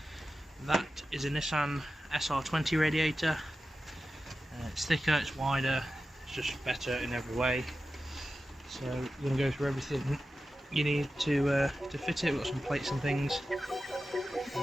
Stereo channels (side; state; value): both; normal; correlation 0.93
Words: That is a Nissan SR20 radiator. It's thicker, it's wider, it's just better in every way. So we're going to go through everything you need to fit it. We've got some plates and things.